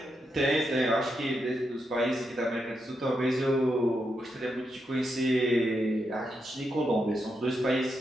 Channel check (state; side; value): normal; both; correlation 0.83